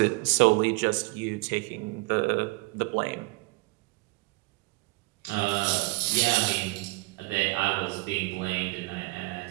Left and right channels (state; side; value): quieter; left; 24.5 dB